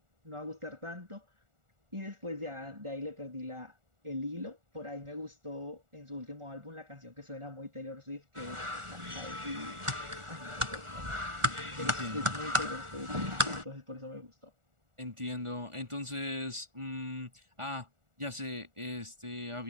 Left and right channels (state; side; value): late; left; 1.4 ms